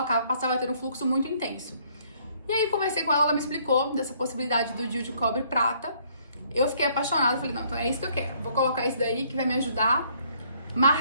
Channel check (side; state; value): both; inverted; correlation -0.64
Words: passava a ter um fluxo muito intenso. E aí conversei com ela, ela me explicou dessa possibilidade do Dil de cobre prata. Eu fiquei apaixonada, falei, não, então é isso que eu quero, vou colocar isso daí que vai me ajudar.